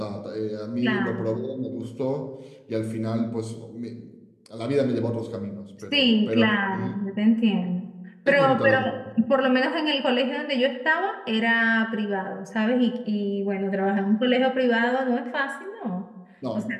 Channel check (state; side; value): identical; both; correlation 1.00